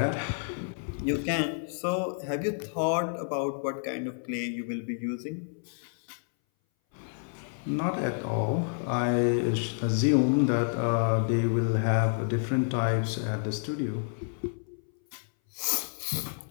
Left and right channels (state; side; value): silent; right; 58 dB below the other